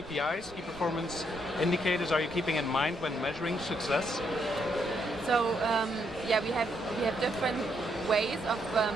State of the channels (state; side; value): normal; both; correlation 0.75